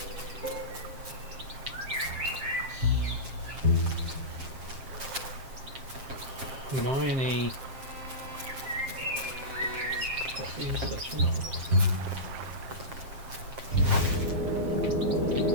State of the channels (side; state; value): left; late; 7.5 ms